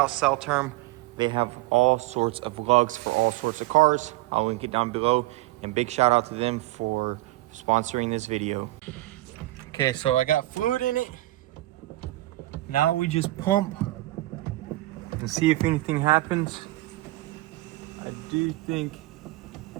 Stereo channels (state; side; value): quieter; left; 18.4 dB